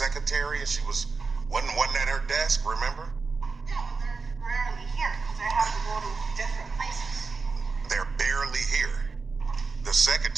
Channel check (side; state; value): left; quieter; 4.4 dB